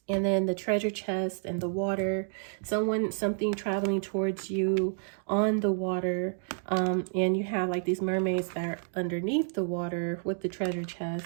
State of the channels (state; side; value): silent; left; digital silence